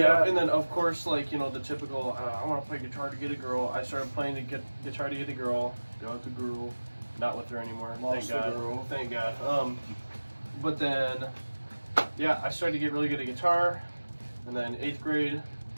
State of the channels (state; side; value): inverted; both; correlation -1.00